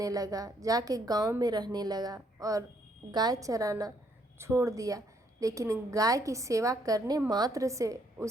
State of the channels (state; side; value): normal; both; correlation 0.70